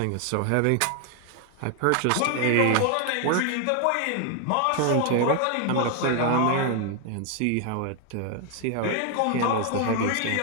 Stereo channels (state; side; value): different; both; correlation 0.00